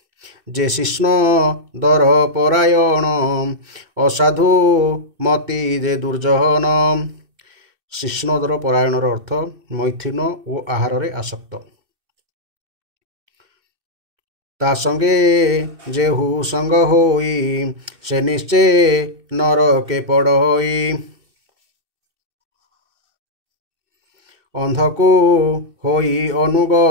जे शिष्ण दर परायण असाधु मति जे दुर्जन। शिष्णदर परायणर अर्थ मैथुन और आहार रे आसक्त। ता संगे जेहु संग होई से निश्चय नरके पड़ई अंधको होई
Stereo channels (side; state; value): left; late; 2.6 ms